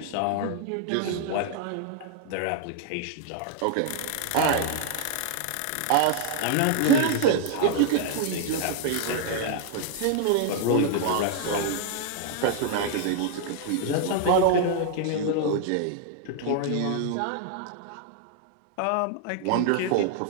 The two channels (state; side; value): different; both; correlation 0.00